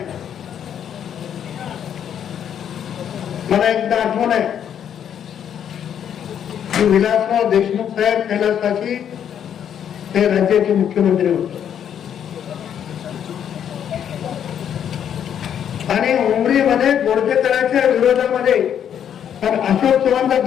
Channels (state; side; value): quieter; right; 9.1 dB